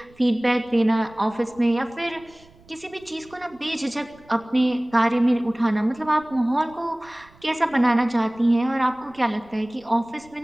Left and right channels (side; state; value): right; noise; rumble, 28 dB below the sound